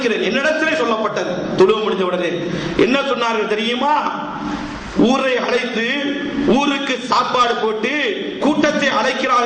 என்னிடத்திலே சொல்லப்பட்டது தொழுவ முடிஞ்ச உடனே என்ன சொன்னார்கள் தெரியுமா? ஊரை அழைத்து ஊருக்கு சாப்பாடு போட்டு கூட்டத்தை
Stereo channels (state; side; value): identical; both; correlation 1.00